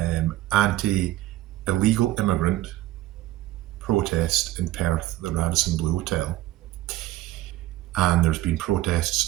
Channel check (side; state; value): left; quieter; 15.8 dB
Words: anti-illegal immigrant protest in Perth at the Radison Blue Hotel, and there's been protests